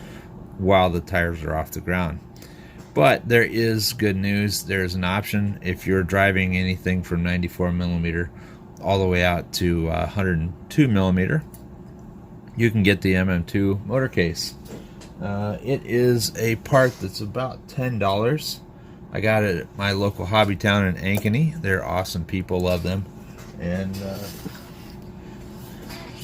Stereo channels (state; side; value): identical; both; correlation 1.00